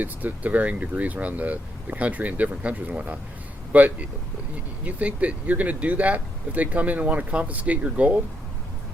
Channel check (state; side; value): normal; both; correlation 0.78